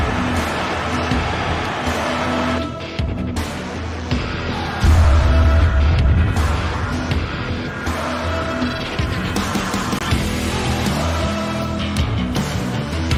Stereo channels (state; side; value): identical; both; correlation 1.00